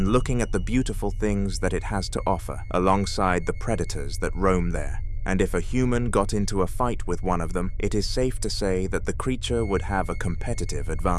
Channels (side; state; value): both; identical; correlation 1.00